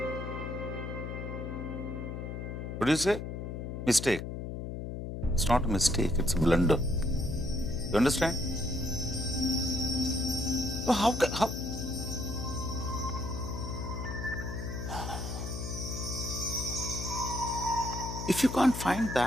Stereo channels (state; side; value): noise; left; hum, 6 dB below the sound